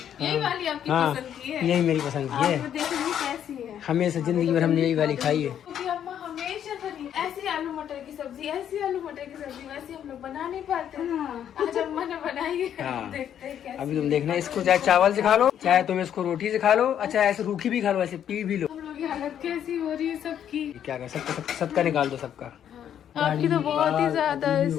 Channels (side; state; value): right; quieter; 9.7 dB